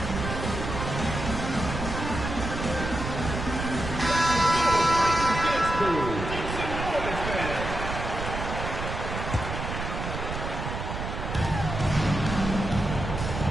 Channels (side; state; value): right; noise; rumble, 5 dB below the sound